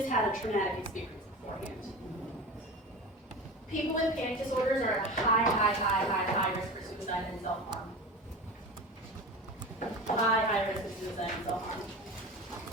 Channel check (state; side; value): normal; both; correlation 0.30